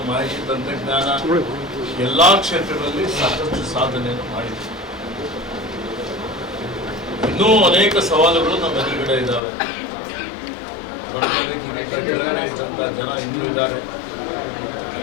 ಮಾಹಿತಿ ತಂತ್ರಜ್ಞಾನ ಎಲ್ಲ ಕ್ಷೇತ್ರಗಳಲ್ಲಿ ಸಾಕಷ್ಟು ಸಾಧನೆಯನ್ನು ಮಾಡಿದೆ। ಇನ್ನೂ ಅನೇಕ ಸವಾಲುಗಳು ನಮ್ಮ ಎದುರುಗಡೆ ಇದ್ದಾವೆ। ಕೆಳಗಡೆ ಇದ್ದಂಥ ಜನ ಇನ್ನೂ ಇದ್ದಾರೆ,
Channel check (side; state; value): right; drops out; at 9.4 s